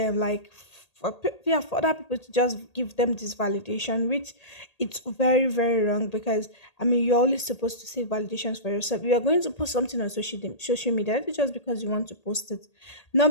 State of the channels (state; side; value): late; right; 1.8 ms